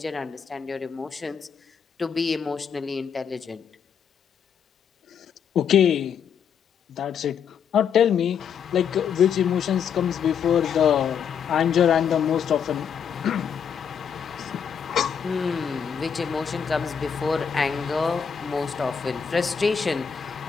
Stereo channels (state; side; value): quieter; right; 7.4 dB